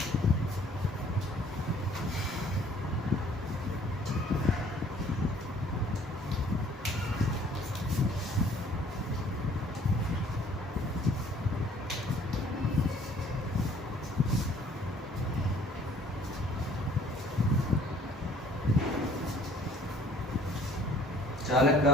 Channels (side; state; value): both; normal; correlation 0.56